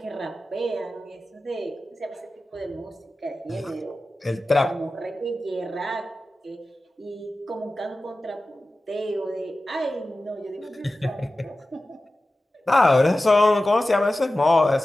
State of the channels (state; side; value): normal; both; correlation 0.95